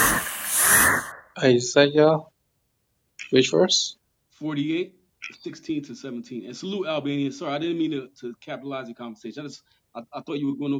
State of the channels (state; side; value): identical; both; correlation 1.00